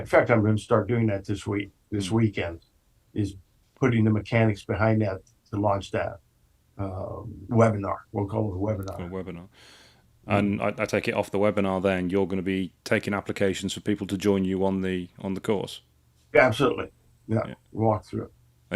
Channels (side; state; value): both; identical; correlation 1.00